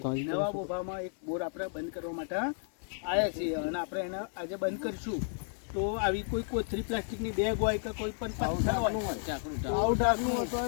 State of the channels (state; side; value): silent; right; digital silence